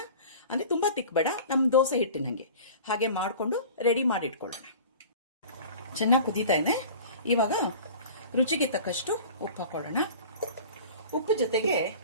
ಅಂದರೆ ತುಂಬ ತಿಕ್ ಬೇಡ, ನಮ್ಮ ದೋಸೆ ಹಿಟ್ಟಿನಂಗೆ ಹಾಗೆ ಮಾಡಿಕೊಂಡು ರೆಡಿ ಮಾಡಿ ಇಟ್ಕೊಳ್ಳೋಣ. ಚೆನ್ನಾಗಿ ಕುದೀತಾ ಇದೆ. ಇವಾಗ ರುಚಿಗೆ ತಕ್ಕಷ್ಟು ಉಪ್ಪು ಹಾಕೊಳ್ಳೋಣ. ಉಪ್ಪು ಜೊತೆಗೆ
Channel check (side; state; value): both; inverted; correlation -0.41